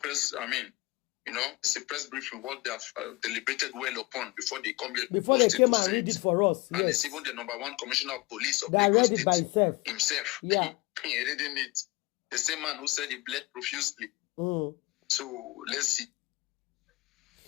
it's a press briefing, what they have deliberated well upon before they come here. Before they came and read it for us. And yes. it's even the #1 commissioner of police of that Lagos read it by himself. Yeah. He reading it. The same man who said he bled profusely. So let's see.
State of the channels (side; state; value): right; quieter; 21.1 dB